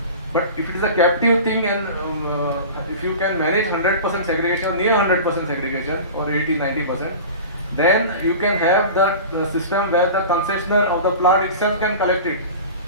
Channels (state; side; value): inverted; both; correlation -0.34